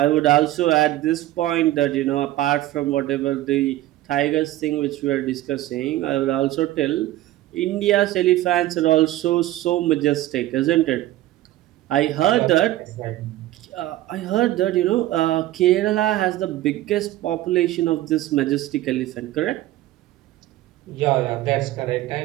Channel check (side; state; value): left; quieter; 15.2 dB